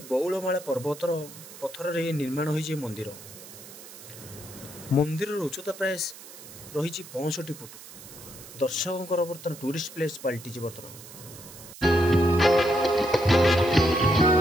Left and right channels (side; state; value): right; noise; hiss, 16 dB below the sound